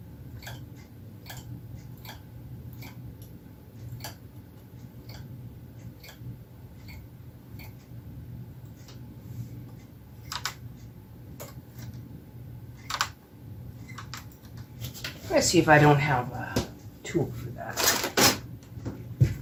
Let's see if I don't have a tool for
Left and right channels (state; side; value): identical; both; correlation 1.00